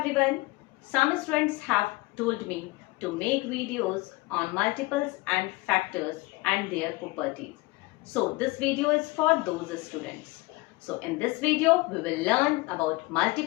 Some students have told me to make videos on multiples and factors and their properties. So this video is for those students. So in this video we will learn about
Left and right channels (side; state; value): right; quieter; 22.8 dB